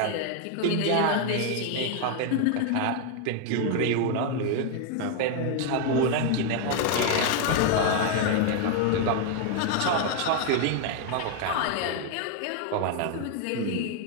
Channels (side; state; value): both; different; correlation 0.00